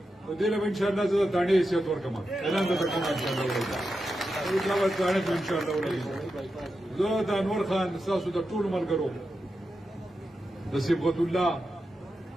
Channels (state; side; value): normal; both; correlation 0.89